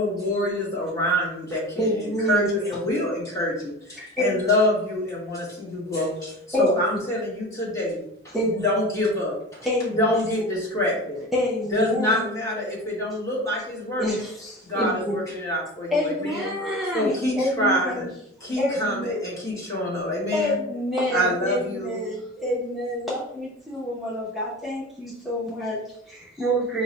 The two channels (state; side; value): normal; both; correlation 0.32